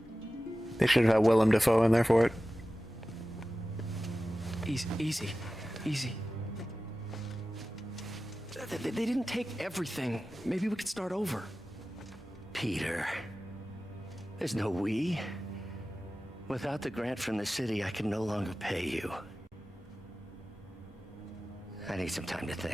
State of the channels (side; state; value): both; normal; correlation 0.95